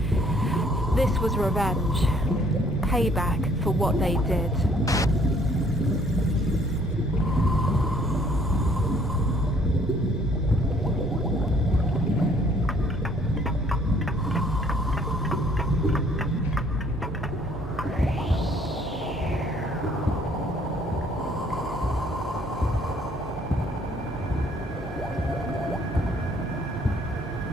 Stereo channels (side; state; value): both; normal; correlation 0.61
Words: This was revenge. Payback for what they did.